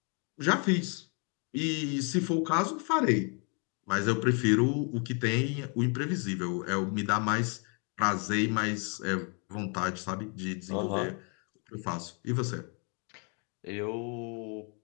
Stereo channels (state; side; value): quieter; right; 37.1 dB